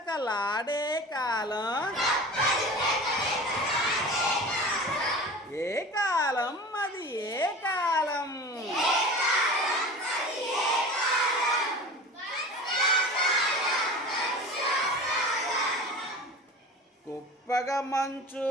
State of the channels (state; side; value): normal; both; correlation 0.36